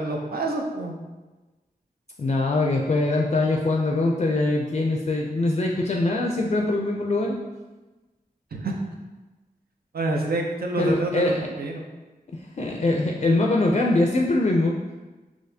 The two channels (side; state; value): both; normal; correlation 0.74